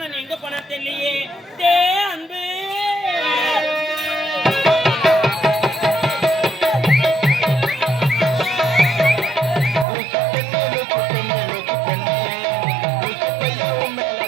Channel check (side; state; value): left; drops out; at 9.9 s